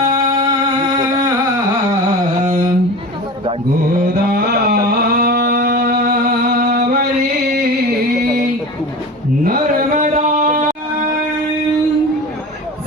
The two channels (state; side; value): normal; both; correlation 0.33